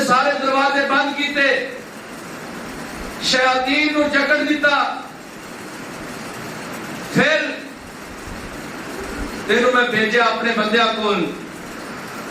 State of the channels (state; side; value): identical; both; correlation 1.00